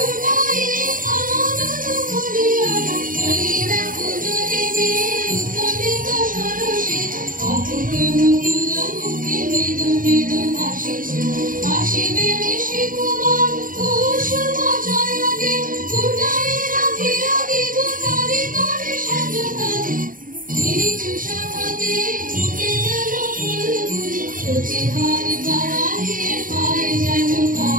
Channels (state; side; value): late; left; 0.40 ms